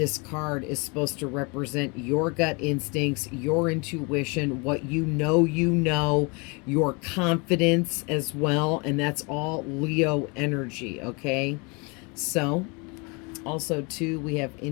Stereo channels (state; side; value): quieter; right; 30.5 dB